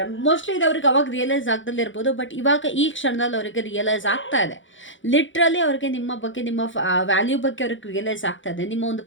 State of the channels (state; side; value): late; right; 0.56 ms